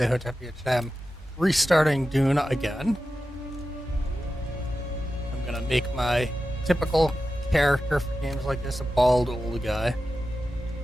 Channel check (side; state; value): both; normal; correlation 0.92